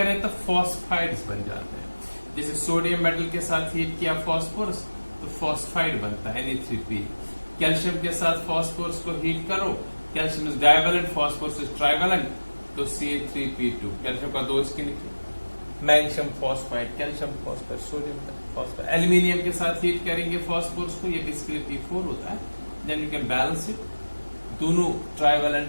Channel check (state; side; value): inverted; both; correlation -1.00